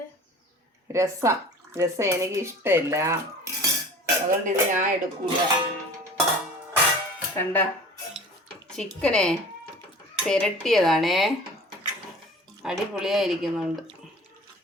രസം എനിക്ക് ഇഷ്ടമില്ല, അതുകൊണ്ട് ഇത് ഞാൻ എടുക്കൂല. കണ്ട ചിക്കനെ പെരട്ടിയതാണേ, അടിപൊളിയായിരിക്കുന്നുണ്ട്.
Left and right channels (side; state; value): both; normal; correlation 0.43